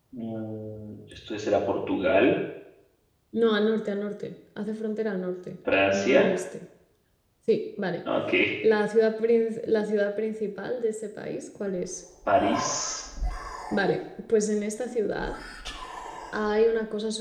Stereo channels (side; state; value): both; identical; correlation 1.00